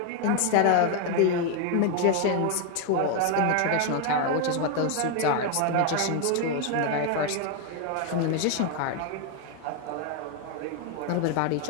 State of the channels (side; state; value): both; different; correlation 0.01